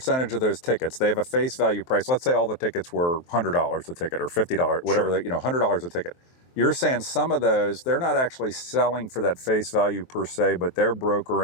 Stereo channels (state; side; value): late; right; 23 ms